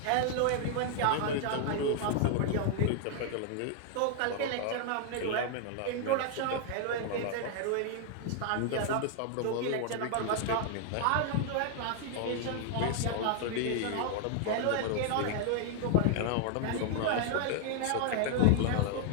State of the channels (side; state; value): both; different; correlation 0.00